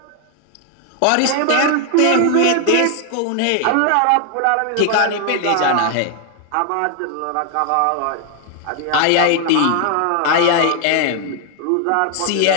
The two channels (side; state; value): both; different; correlation 0.00